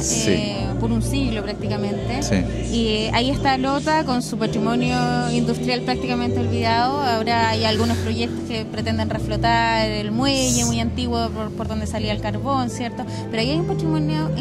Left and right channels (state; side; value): identical; both; correlation 1.00